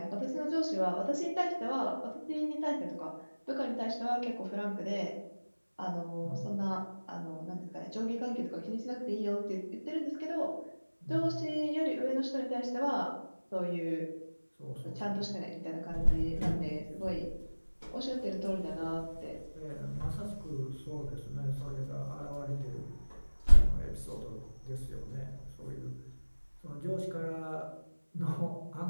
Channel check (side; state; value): both; inverted; correlation -1.00